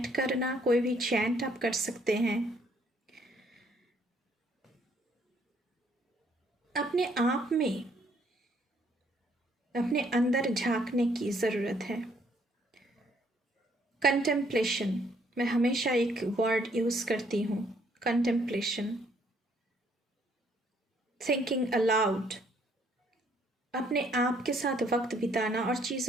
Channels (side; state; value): both; normal; correlation 0.66